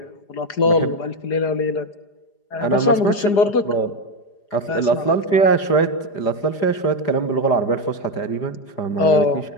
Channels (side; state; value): right; late; 4.9 ms